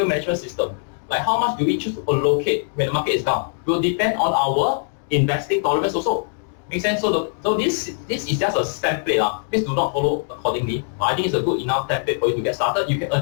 management system, like how much do we choose to allocate when the market is down, will depend on our investing tolerance also. Make sense? So this is just a template. Please do not follow accordingly. But I think it's a good enough template for you to get started. You can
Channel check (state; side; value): silent; right; 57 dB below the other